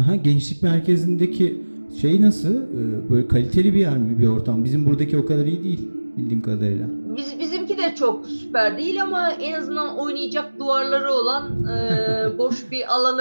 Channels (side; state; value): both; inverted; correlation -1.00